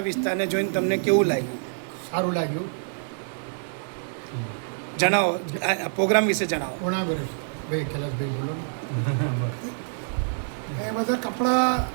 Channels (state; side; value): silent; left; digital silence